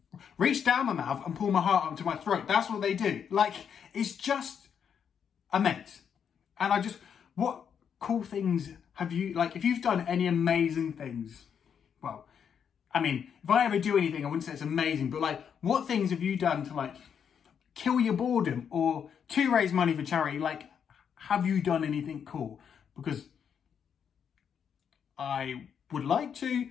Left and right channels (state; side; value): quieter; right; 7.6 dB